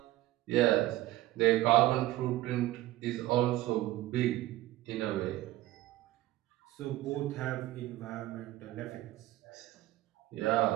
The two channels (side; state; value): left; quieter; 16.1 dB